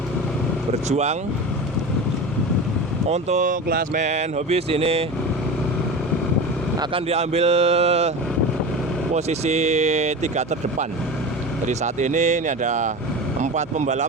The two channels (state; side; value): normal; both; correlation 0.29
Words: berjuang untuk klasmen hobbies. Ini akan diambil posisi 3 terdepan. Jadi saat ini ada 4